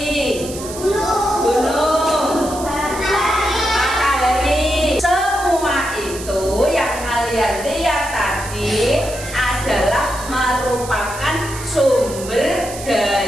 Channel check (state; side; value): noise; right; hiss, 12 dB below the sound